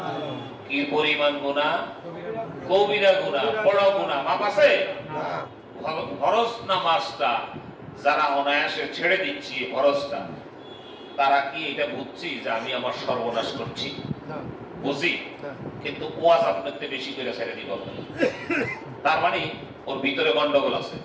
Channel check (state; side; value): identical; both; correlation 1.00